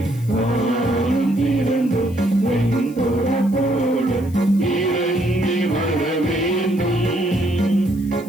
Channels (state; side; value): noise; left; hiss, 24 dB below the sound